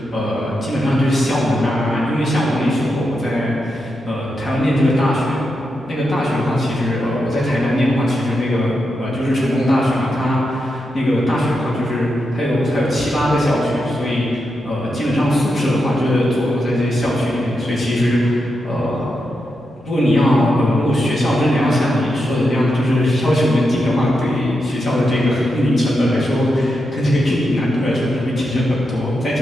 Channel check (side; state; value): both; normal; correlation 0.86